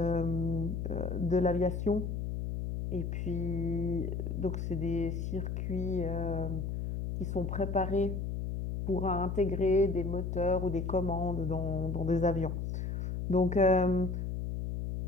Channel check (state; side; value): noise; left; hum, 3 dB below the sound